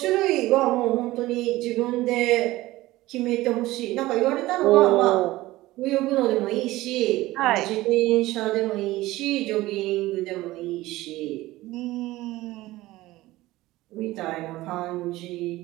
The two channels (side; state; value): left; quieter; 17.8 dB